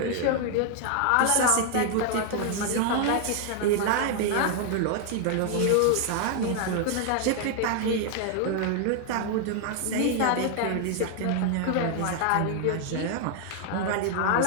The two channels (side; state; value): both; different; correlation 0.00